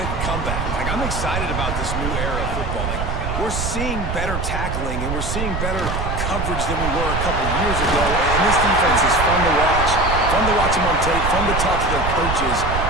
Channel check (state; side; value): noise; right; rumble, 3 dB below the sound